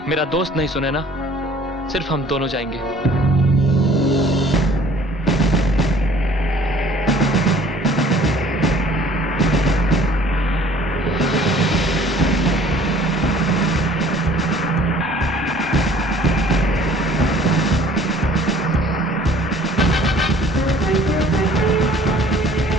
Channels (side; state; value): both; normal; correlation 0.53